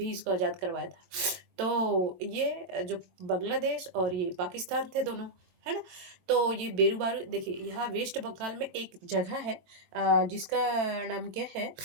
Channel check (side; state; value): left; late; 22 ms